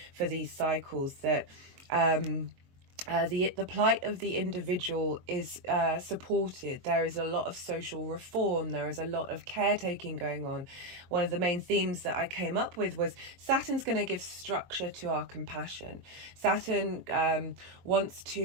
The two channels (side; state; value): left; late; 22 ms